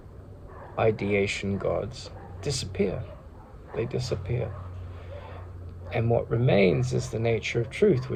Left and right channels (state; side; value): identical; both; correlation 1.00